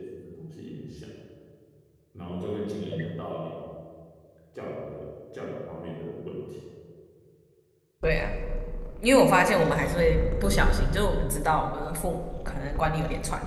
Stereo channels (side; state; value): both; identical; correlation 1.00